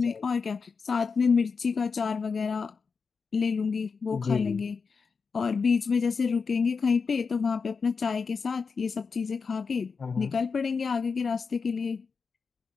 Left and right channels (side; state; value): right; quieter; 5.2 dB